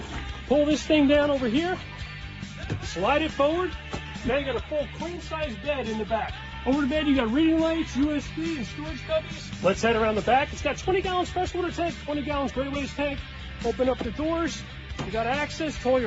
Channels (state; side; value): identical; both; correlation 1.00